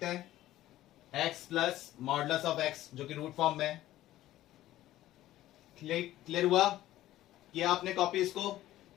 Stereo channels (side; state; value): right; quieter; 14.6 dB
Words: हैं, x plus modulus of x जो कि रूट फॉर्म में है। क्लियर हुआ, किया आपने कॉपी इसको।